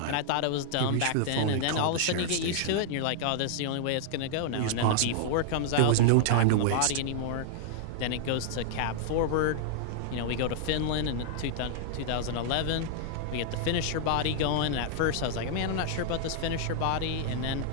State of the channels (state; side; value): different; both; correlation -0.01